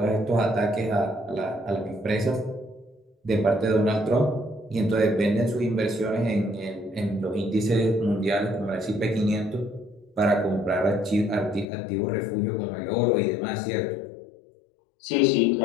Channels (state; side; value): drops out; right; at 11.7 s